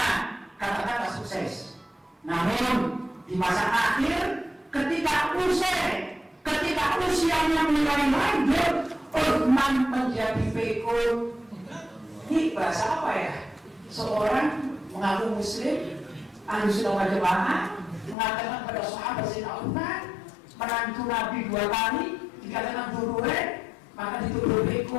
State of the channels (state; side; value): drops out; right; at 18.2 s